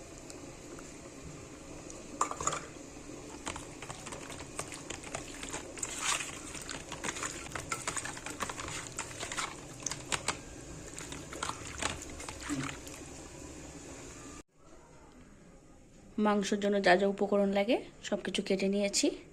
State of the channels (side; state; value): both; identical; correlation 1.00